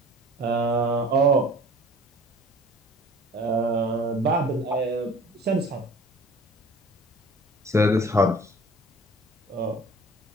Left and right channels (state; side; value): normal; both; correlation 0.46